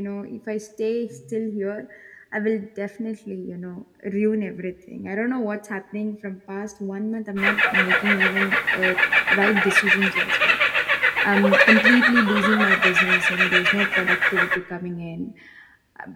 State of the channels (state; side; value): identical; both; correlation 1.00